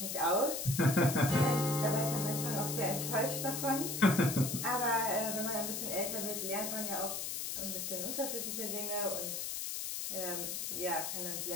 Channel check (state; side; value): noise; left; hiss, 3 dB below the sound